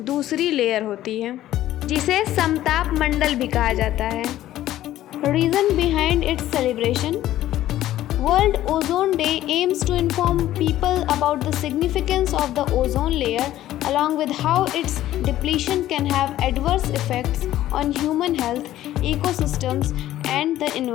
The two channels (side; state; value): right; quieter; 13.7 dB